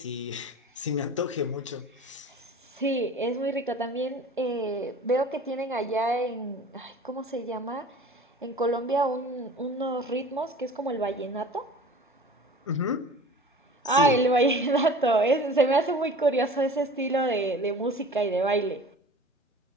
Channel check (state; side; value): normal; both; correlation 0.42